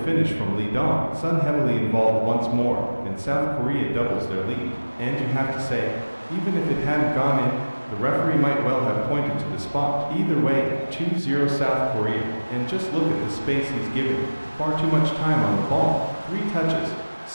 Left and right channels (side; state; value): both; inverted; correlation -1.00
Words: finish from Lee Dong. Son heavily involved once more, and South Korea doubles their lead. And you have to say, even if it hadn't gone in, the referee might well have pointed to the spot. Either way, 2-0 South Korea. And just look at the space he's given. Far too much time on the ball. 3 touches.